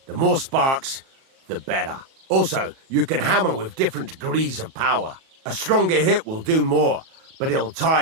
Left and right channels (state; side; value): late; left; 37 ms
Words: The more sparks, the better. Also, you can hammer with different degrees of power. A stronger hit will do more, but it'll